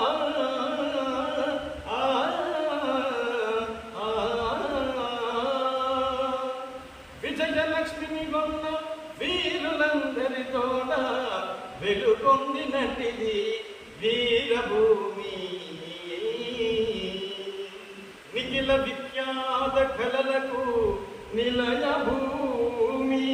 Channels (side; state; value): both; identical; correlation 1.00